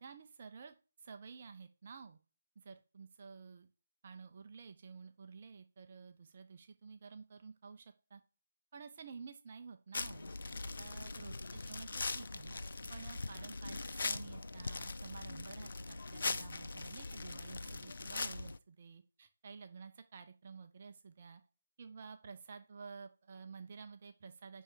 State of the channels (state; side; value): inverted; both; correlation -0.89